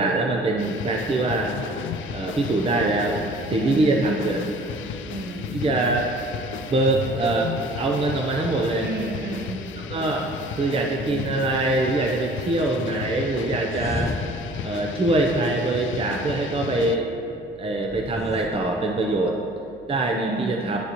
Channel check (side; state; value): right; noise; hum, 26 dB below the sound